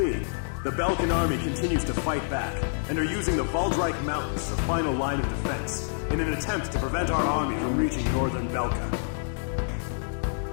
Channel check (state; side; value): silent; right; digital silence